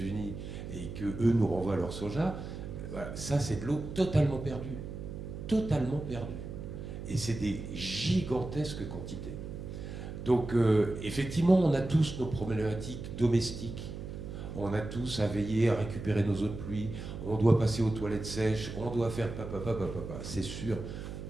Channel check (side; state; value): right; noise; hum, 8 dB below the sound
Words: et que eux nous renvoient leur soja, voilà, ça c'est de l'eau totalement perdue. Totalement perdue. Et c'est des gigantesques quantités. Donc effectivement, on a tous nos problématiques domestiques. On a tous à veiller à récupérer nos eaux de pluie, on doit passer aux toilettes sèches, on doit faire papa, c'est sûr.